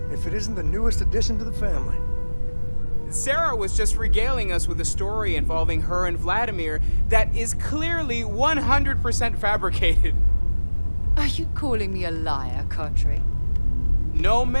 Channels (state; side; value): inverted; both; correlation -1.00